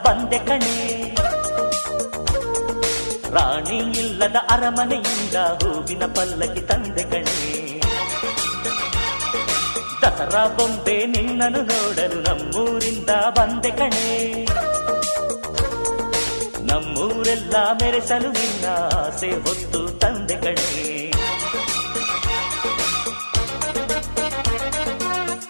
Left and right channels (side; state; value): both; inverted; correlation -1.00